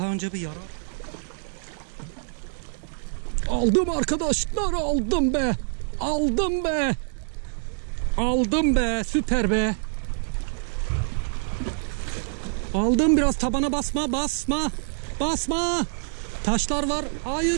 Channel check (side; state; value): left; silent; digital silence